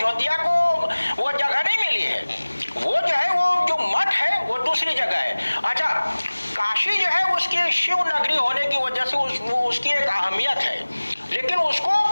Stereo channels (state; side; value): inverted; both; correlation -1.00